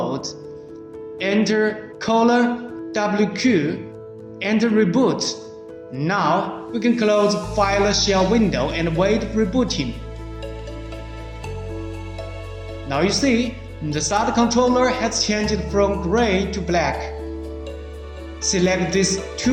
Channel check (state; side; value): identical; both; correlation 1.00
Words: Enter $WQ. Enter reboot. Now we can close file shell window and wait rebooting. Now you see, the SATA controller has changed from gray to black. Select this